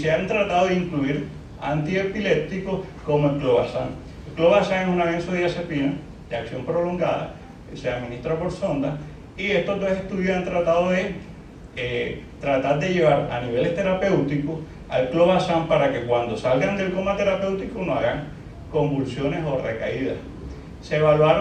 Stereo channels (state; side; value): identical; both; correlation 1.00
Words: han tratado de incluir antiepilépticos como el clobazam. El clobazam es una benzodiazepina de acción prolongada, que se administra por sonda, y estos 2 estudios han tratado de tratar de llevar a niveles terapéuticos al clobazam para que cuando salgan del coma terapéutico no hagan convulsiones o recaídas. Se